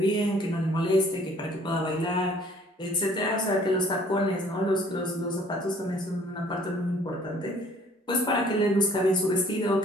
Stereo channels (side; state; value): both; normal; correlation 0.57